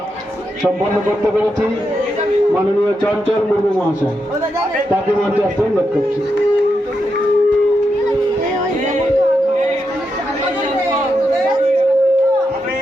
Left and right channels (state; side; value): normal; both; correlation 0.84